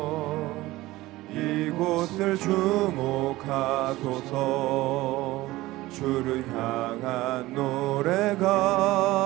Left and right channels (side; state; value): left; quieter; 18.2 dB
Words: 이곳을 주목하소서. 주를 향한